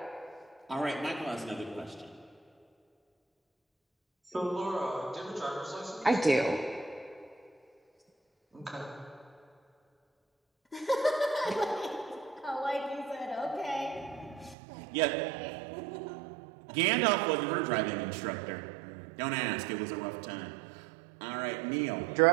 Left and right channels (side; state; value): left; drops out; at 14.6 s